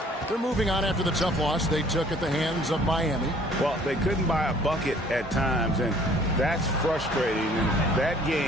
They're moving on after the tough loss they took at the hands of Miami. Well, they couldn't buy a bucket at times, and that's frustrating. And that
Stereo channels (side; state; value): both; normal; correlation 0.56